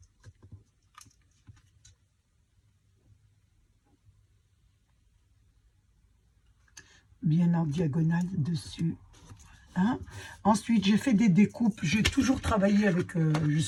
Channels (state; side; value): identical; both; correlation 1.00